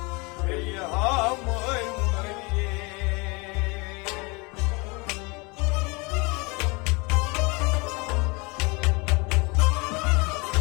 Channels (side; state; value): right; quieter; 28.0 dB